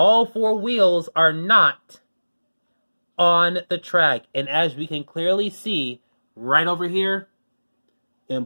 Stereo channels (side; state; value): both; inverted; correlation -1.00